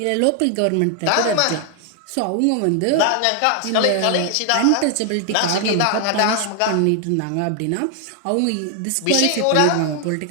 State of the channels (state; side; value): different; both; correlation 0.00